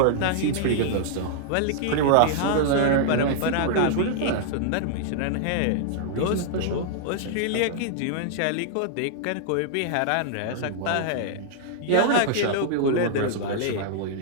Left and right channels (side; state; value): both; different; correlation -0.01